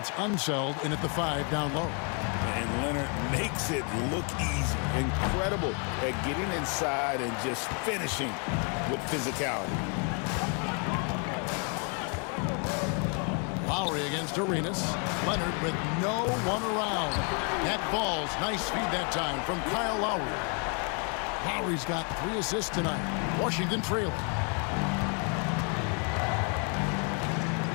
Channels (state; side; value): quieter; right; 38.0 dB